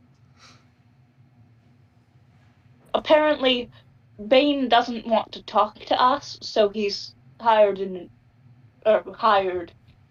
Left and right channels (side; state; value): both; identical; correlation 1.00